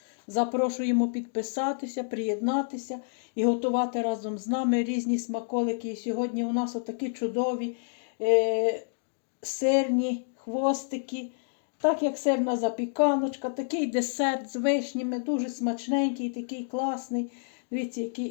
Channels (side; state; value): right; silent; digital silence